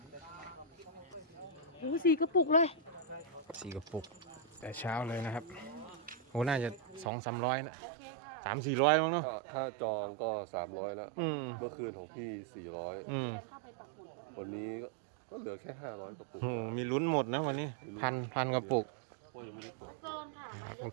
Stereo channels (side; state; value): left; drops out; at 7.1 s